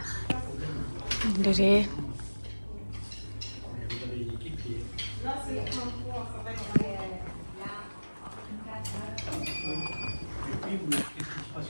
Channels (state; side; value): inverted; both; correlation -1.00